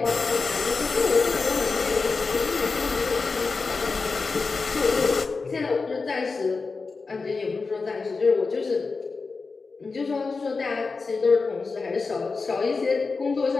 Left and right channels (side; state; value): right; quieter; 4.3 dB